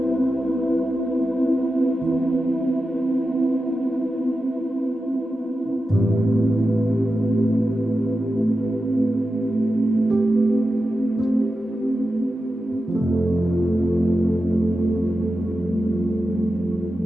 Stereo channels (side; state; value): both; normal; correlation 0.91